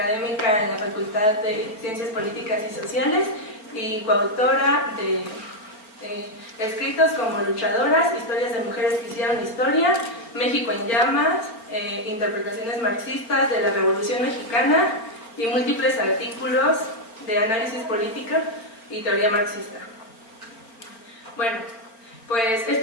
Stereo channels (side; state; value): right; late; 4.4 ms